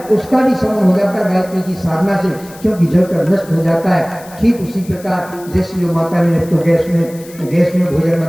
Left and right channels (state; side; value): noise; left; hiss, 21 dB below the sound